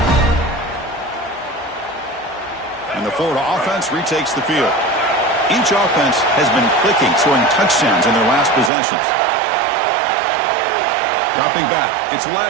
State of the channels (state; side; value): drops out; left; at 8.7 s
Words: Florida offense retakes the field. Each offense has been clicking, scoring touchdowns in their last possessions. Dropping back, it's